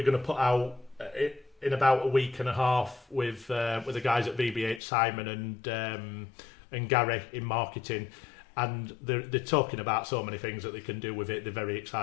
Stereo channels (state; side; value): drops out; right; at 4.8 s